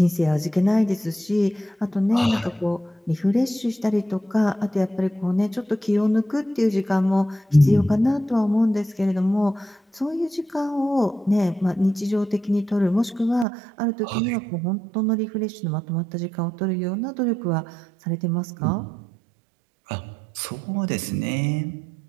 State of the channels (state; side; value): drops out; left; at 13.5 s